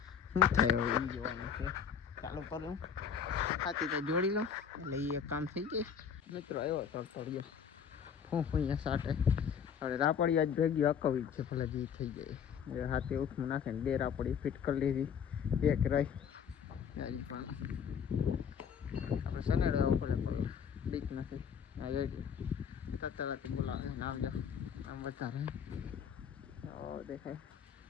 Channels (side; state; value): right; quieter; 7.5 dB